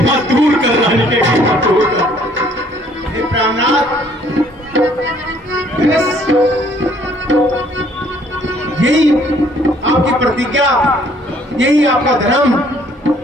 मत दूर कर, रानी के मत दूर कर। हे प्राणनाथ, यही आपकी प्रतिज्ञा, यही आपका धर्म।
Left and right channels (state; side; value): normal; both; correlation 0.61